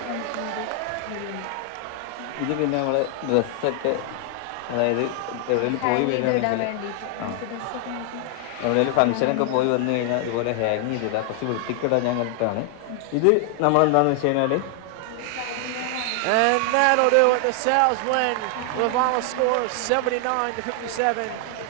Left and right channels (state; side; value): different; both; correlation 0.00